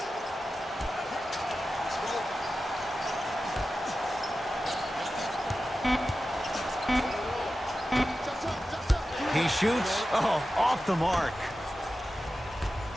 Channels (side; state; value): both; normal; correlation 0.93